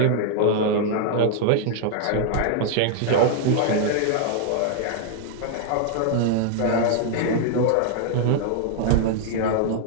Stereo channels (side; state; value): both; different; correlation -0.01